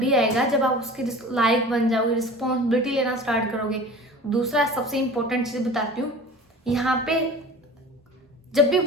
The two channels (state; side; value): normal; both; correlation 0.39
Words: आएगा जब आप उसके लायक बन जाओगे, रिस्पॉन्सिबिलिटी लेना स्टार्ट करोगे। दूसरा सबसे इंपॉर्टेंट चीज बताती हूँ, यहाँ पे जब भी